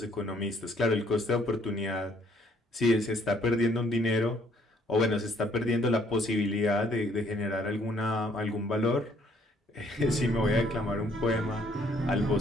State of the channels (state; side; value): normal; both; correlation 0.65